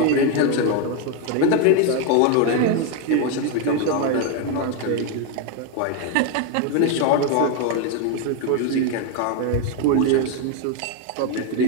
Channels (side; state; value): both; different; correlation 0.01